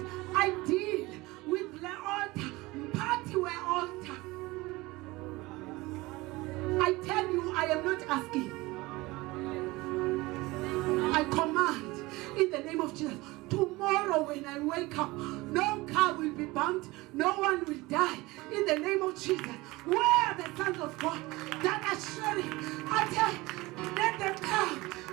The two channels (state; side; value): quieter; left; 21.2 dB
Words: I deal with the altar. Party where altar. I tell you, I am not asking. I command in the name of Jesus. Tomorrow when I wake up, no car will be bumped, no one will die. In the name of Jesus. Where are the sons of God that are sharing? I tell you, let them come